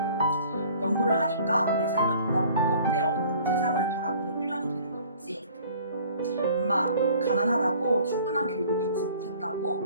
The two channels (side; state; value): both; inverted; correlation -0.52